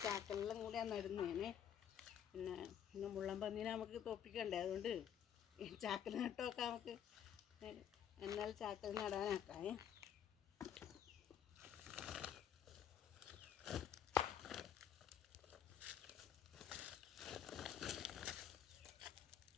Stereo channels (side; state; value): right; quieter; 9.1 dB